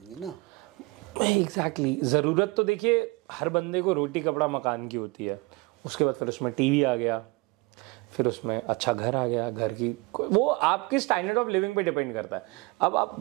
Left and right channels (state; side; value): quieter; left; 25.1 dB